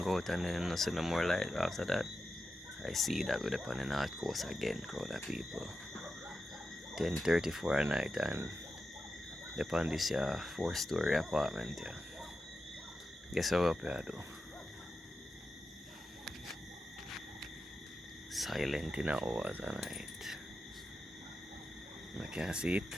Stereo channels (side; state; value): both; normal; correlation 0.90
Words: go out and then I see no more light after that. I see that we're up on the north coast again, crowd of people. 10:34 at night and upon this 4-story apartment here. Guess how up here do? Silent in the hours of night. I can't see it.